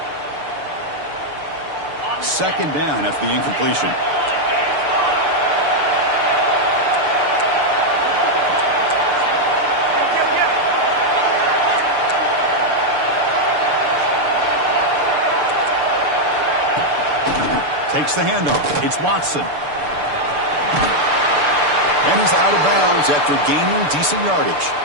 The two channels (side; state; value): left; late; 6.8 ms